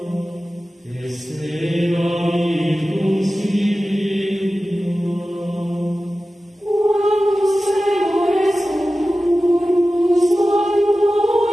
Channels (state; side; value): normal; both; correlation 0.95